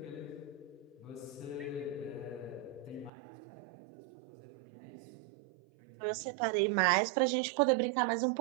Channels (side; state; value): left; drops out; at 3.1 s